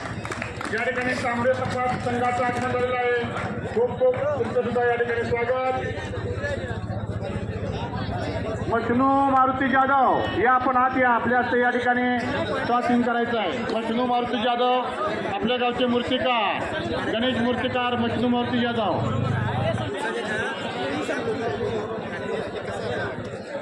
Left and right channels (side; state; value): both; identical; correlation 1.00